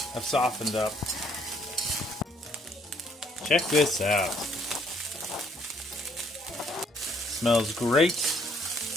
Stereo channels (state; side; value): normal; both; correlation 0.66